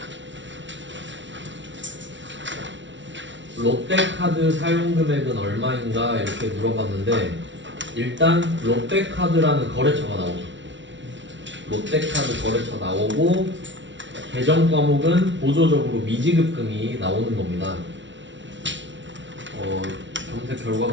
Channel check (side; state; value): left; late; 0.54 ms